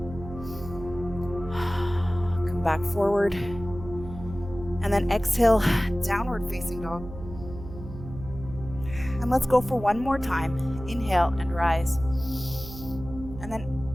Come back forward, and then exhale, downward facing dog. And let's go for one more time. Inhale and rise. And then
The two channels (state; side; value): noise; right; hum, 12 dB below the sound